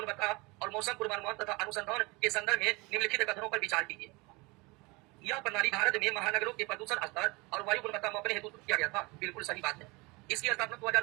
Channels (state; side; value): quieter; left; 25.4 dB